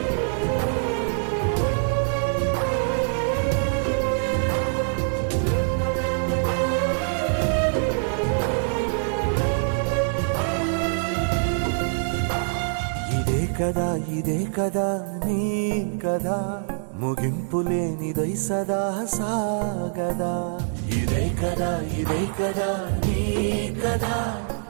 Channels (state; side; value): silent; left; digital silence